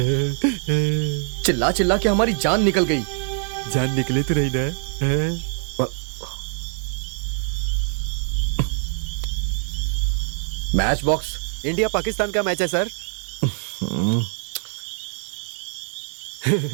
चिल्ला चिल्ला के हमारी जान निकल गई। जान निकले तो रही ना। Match box. इंडिया पाकिस्तान का मैच है सर।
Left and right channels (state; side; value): silent; left; 63 dB below the other